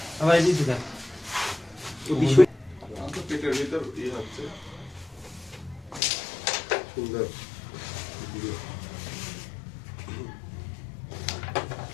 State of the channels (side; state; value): right; drops out; at 6.0 s